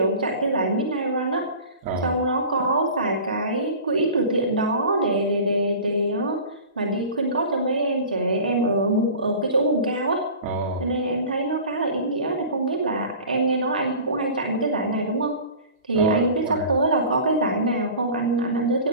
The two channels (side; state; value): both; inverted; correlation -0.39